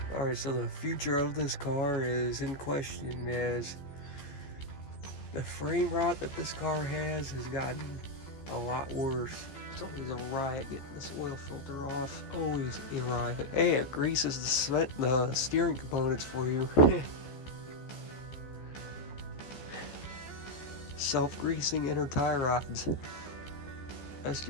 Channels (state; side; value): late; right; 14 ms